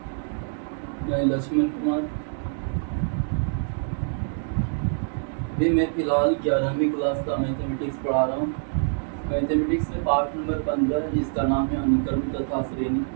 मैं लक्ष्मण कुमार। भी मैं फिलहाल 11वीं क्लास का मैथमेटिक्स पढ़ा रहा हूँ। मैथमेटिक्स में पार्ट नंबर 15 है, जिसका नाम है अनुक्रम तथा श्रेणी।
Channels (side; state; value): left; silent; digital silence